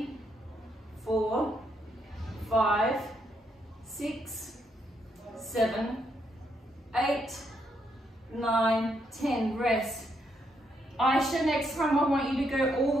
4, 5, 6, 7, 8, 9, 10. Rest. Aisha, next time I want you to go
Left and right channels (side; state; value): both; normal; correlation 0.77